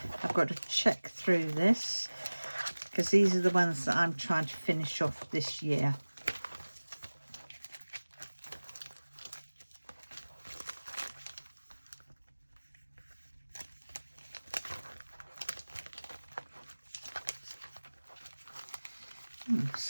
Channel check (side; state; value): both; inverted; correlation -1.00